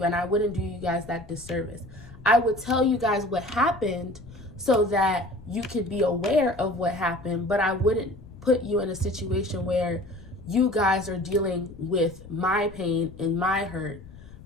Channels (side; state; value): left; noise; rumble, 18 dB below the sound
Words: and I wouldn't do you guys that disservice. I would tell you guys what happened so that you could be aware of what happened, but I wouldn't put you in a situation where you guys are dealing with my pain and my hurt.